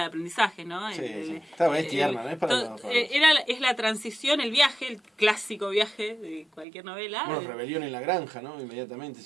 aprendizaje, ¿no? Sí. Está bien, tierna, ¿no? Es para es la transición, el viaje, el clásico viaje de cualquier novela. Bueno, Rebelión en la granja, ¿no? Inmediatamente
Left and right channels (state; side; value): drops out; left; at 6.7 s